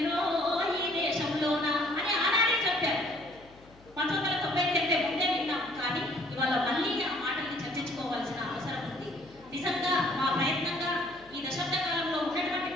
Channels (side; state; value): left; noise; hum, 25 dB below the sound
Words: ఈ దేశంలోన అని ఆనాడే చెప్పారు. 1990 కంటే ముందే విన్నాం. కానీ ఇవాళ మళ్ళీ ఆ మాటల్ని చర్చించుకోవాల్సిన అవసరం ఉంది. నిజంగా మా ప్రయత్నంగా ఈ దశాబ్ద కాలంలో ఉన్నటువంటి